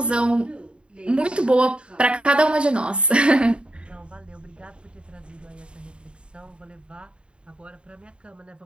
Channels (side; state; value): left; late; 0.055 ms